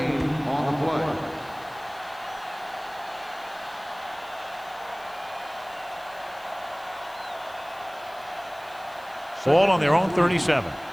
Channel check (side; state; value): left; noise; hiss, 24 dB below the sound